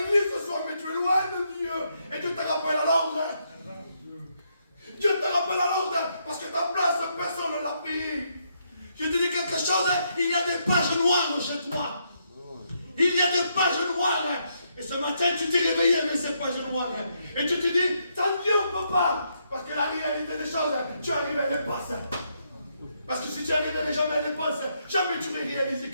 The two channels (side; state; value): both; inverted; correlation -0.77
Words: ce soir, mais tu es loin de Dieu. Et Dieu te rappelle à l'ordre. Dieu te rappelle à l'ordre, parce que ta place, personne ne l'a pris. Je te dis quelque chose, il y a des pages noires chez toi. Il y a des pages noires. Et ce matin, tu t'es réveillé avec ces pages noires. Et tu te dis, sans Dieu, on ne peut pas. Parce que la réalité des choses, tu arrives à les passer. Parce que si tu arrives jamais à les passer, jamais tu vas réaliser